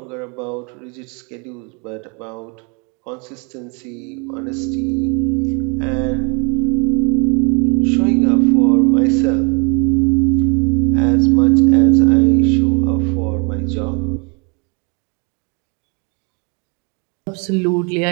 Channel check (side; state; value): left; quieter; 33.5 dB